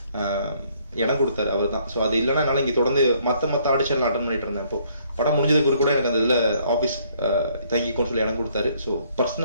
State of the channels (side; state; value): both; inverted; correlation -0.66